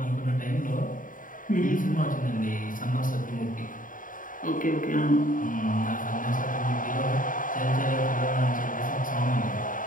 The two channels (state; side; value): late; right; 0.39 ms